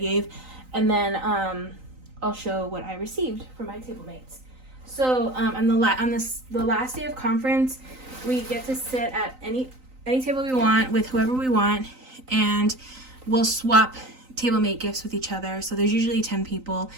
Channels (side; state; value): left; late; 3.9 ms